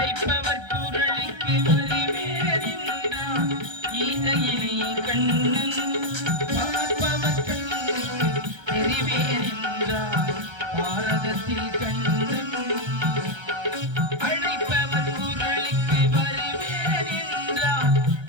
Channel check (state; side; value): late; left; 1.3 ms